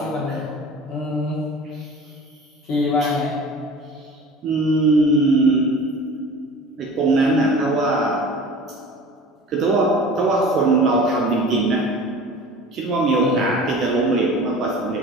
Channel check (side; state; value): both; normal; correlation 0.40